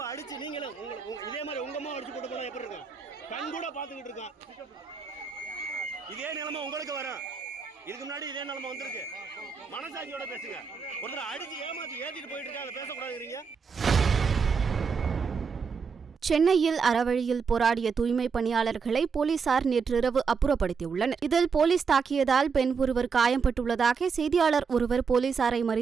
அடிச்சு நீங்களும் இதே மாதிரி உங்க அம்மா அடிச்சு போட்டு போனா எப்படி இருக்கும்? கண் கூட பாத்துக்கிட்டு இருக்கான். இதே நிலைமை உங்களுக்கு வரும். இதுக்கு முன்னாடி இதே நிலைமை வந்திருக்கு. மனசாட்சியோட பேசுங்க. ஒருத்தர் அடிச்சு ஏமாத்தி ஏத்திட்டு போயிட்டு இருக்காங்க, அதை பேசக்கூடாதுங்கிறீங்க. சென்னையில் அறவழியில் போராடிய தூய்மை பணியாளர்களை போலீசார் நேற்றிரவு அப்புறப்படுத்தியுள்ளனர். இதில் போலீஸ் தாக்கியதால் பெண் ஒருவர் காயம்பட்டுள்ளதாக செய்தியாளர் ஒருவர் போலீசாரை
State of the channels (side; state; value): left; quieter; 5.6 dB